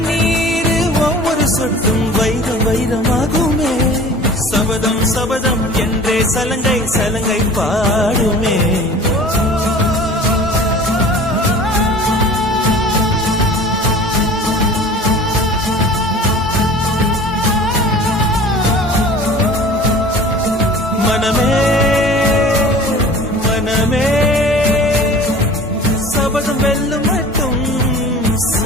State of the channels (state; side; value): normal; both; correlation 0.42